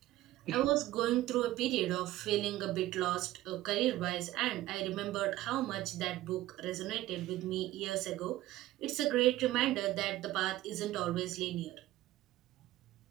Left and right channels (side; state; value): left; quieter; 15.7 dB